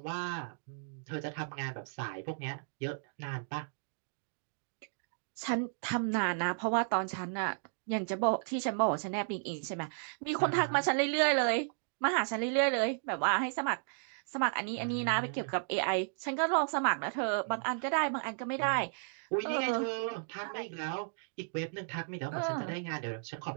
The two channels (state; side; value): silent; left; digital silence